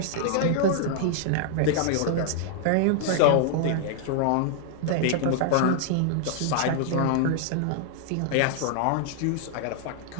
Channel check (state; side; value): different; both; correlation -0.01